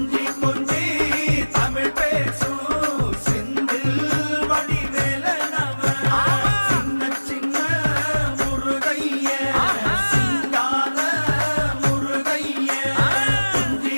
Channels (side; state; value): both; inverted; correlation -1.00